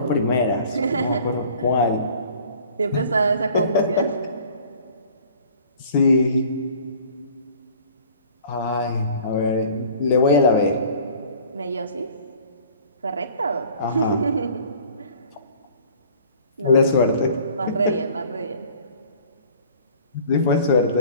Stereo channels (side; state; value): both; inverted; correlation -0.50